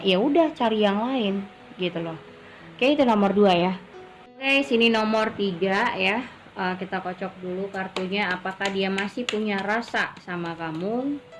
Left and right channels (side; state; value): both; identical; correlation 1.00